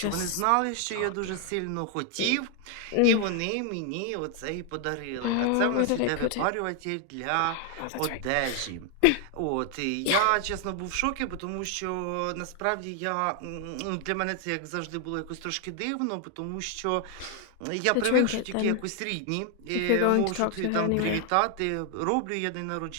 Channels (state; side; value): different; both; correlation 0.00